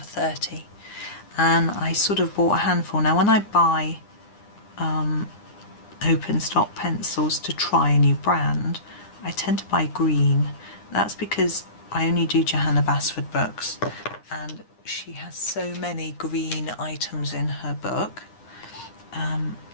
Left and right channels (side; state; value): right; late; 9.8 ms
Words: 30, and I sort of bought a handful. Now when I buy open stock pencils to try a new brand, I tend to buy green. That's because I only do Johanna Basford books, and she has so many green items in her book.